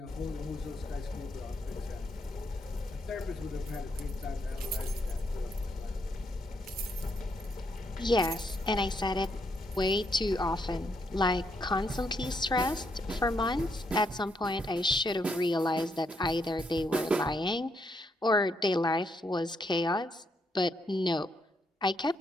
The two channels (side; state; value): both; normal; correlation 0.76